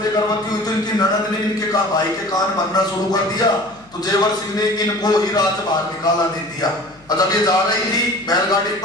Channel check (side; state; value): left; noise; hum, 28 dB below the sound